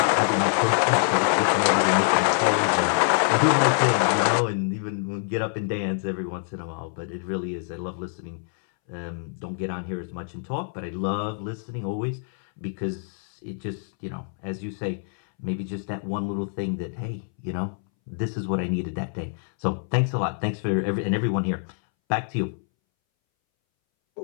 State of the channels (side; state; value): right; silent; 61 dB below the other